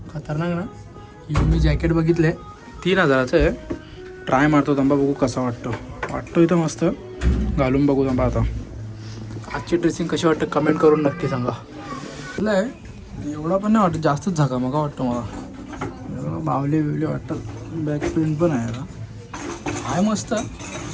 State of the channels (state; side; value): identical; both; correlation 1.00